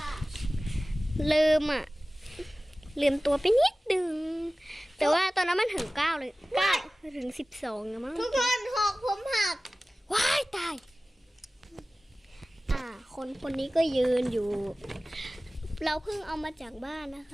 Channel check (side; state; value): both; normal; correlation 0.97